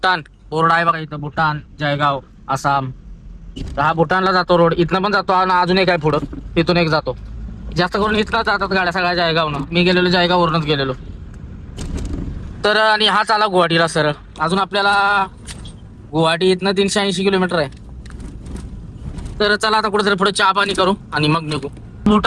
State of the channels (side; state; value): both; identical; correlation 1.00